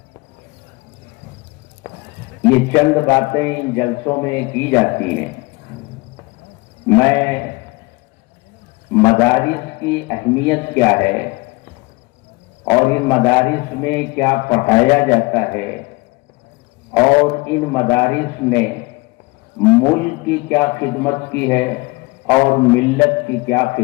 یہ چند باتیں ان جلسوں میں کی جاتی ہیں۔ میں مدارس کی اہمیت کیا ہے اور ان مدارس میں کیا پڑھایا جاتا ہے اور ان مدارس نے ملک کی کیا خدمت کی ہے اور ملت کی کیا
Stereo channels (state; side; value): quieter; right; 24.9 dB